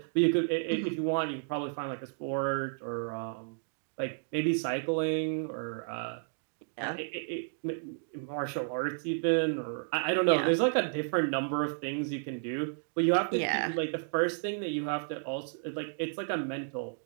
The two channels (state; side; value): silent; left; digital silence